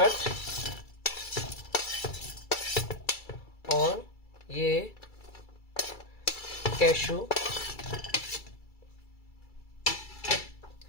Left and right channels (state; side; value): late; right; 2.3 ms